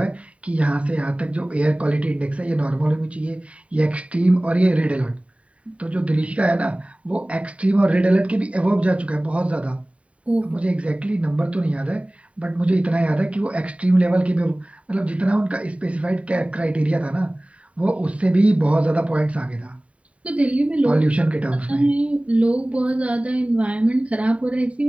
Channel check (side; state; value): left; late; 0.065 ms